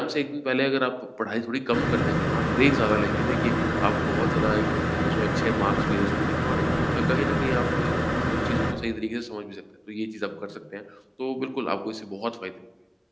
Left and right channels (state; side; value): identical; both; correlation 1.00